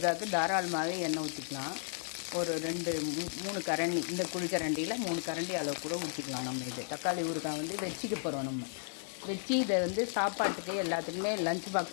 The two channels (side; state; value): right; silent; digital silence